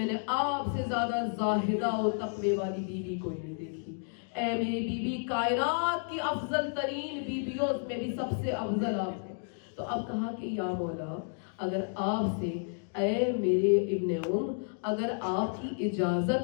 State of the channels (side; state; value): right; silent; 57 dB below the other